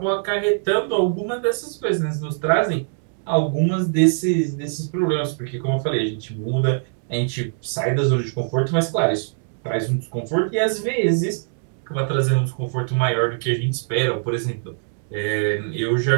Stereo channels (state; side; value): silent; left; digital silence